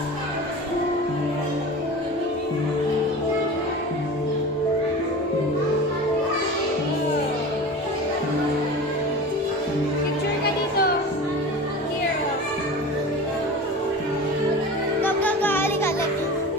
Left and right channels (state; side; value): normal; both; correlation 0.34